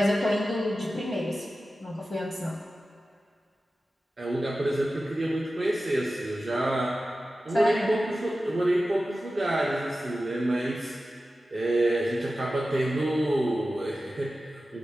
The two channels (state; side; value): normal; both; correlation 0.94